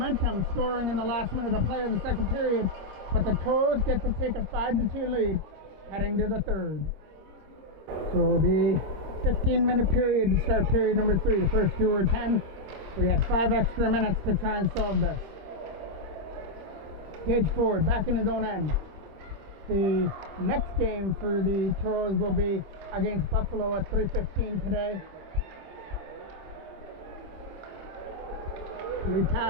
scoring in the last minute of play of the second period, but the Toros get to take a 5-2 lead heading to the third. So it'll be 15-minute period to start period number 3. The first 2 were 10. We had 5 extra minutes to try and solve this. Gage Ford back in his own end. The next game for the Toros will be against Buffalo at 3:15 today. Lead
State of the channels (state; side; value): late; left; 26 ms